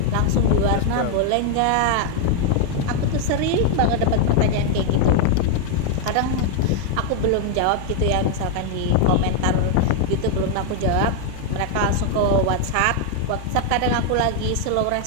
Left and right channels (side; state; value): both; different; correlation 0.00